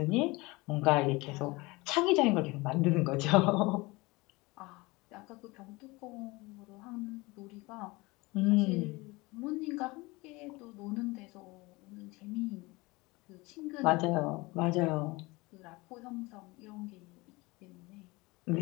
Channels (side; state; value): right; quieter; 23.3 dB